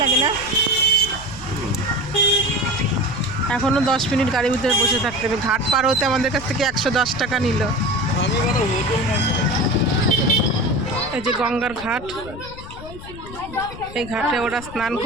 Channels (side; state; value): left; noise; rumble, 14 dB below the sound